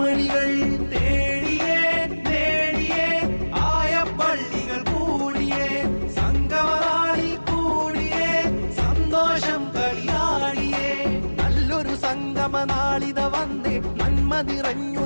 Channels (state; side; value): inverted; both; correlation -1.00